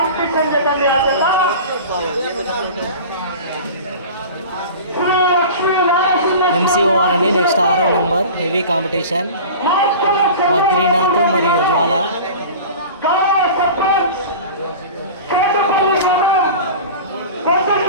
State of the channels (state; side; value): inverted; both; correlation -0.36